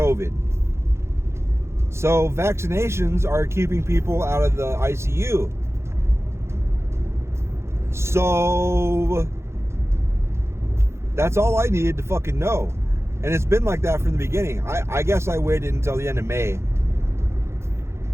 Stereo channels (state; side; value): late; left; 0.13 ms